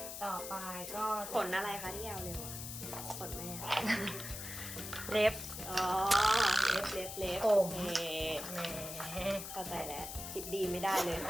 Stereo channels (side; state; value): left; noise; hiss, 8 dB below the sound